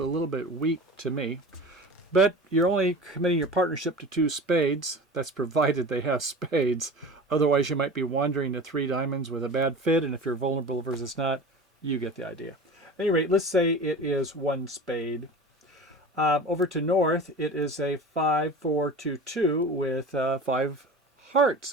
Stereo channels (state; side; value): normal; both; correlation 0.35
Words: little bit weak to me. But you're only committing your partnership to 2 spades. That's provided they have spades. Otherwise, you might be wandering to 3 diamonds with a bad fit, and if you're vulnerable versus not, you get the idea. At any rate, let's say it is 1 spade. Over to North, it is a 5-4-2-2 with 5